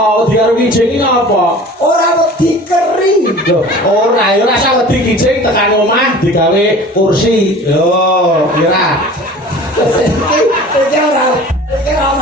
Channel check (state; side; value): normal; both; correlation 0.42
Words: Wedi karo kijing iki ngopo? Ora wedi keri. Loh, ora ya ora usah wedi kijing tekan omah digawe kursi. Yo, kira. Iki ora